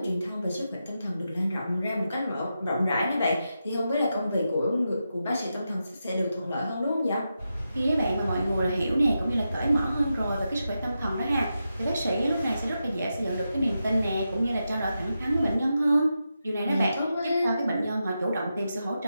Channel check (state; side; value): inverted; both; correlation -0.88